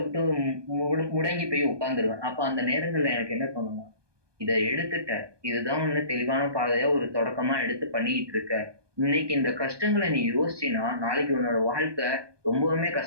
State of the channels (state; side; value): late; left; 1.2 ms